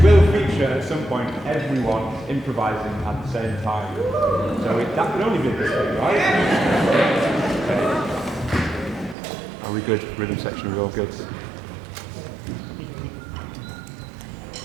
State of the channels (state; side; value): drops out; left; at 9.2 s